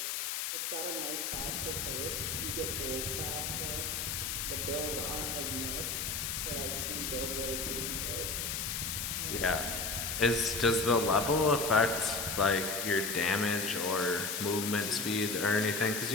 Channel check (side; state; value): left; noise; hiss, 2 dB below the sound